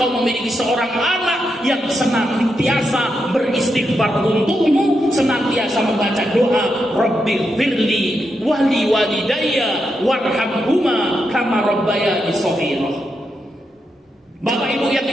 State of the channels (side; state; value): both; normal; correlation 0.84